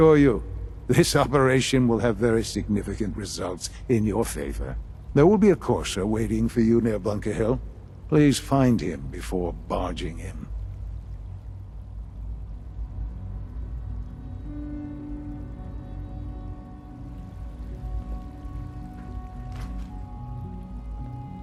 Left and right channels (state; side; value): identical; both; correlation 1.00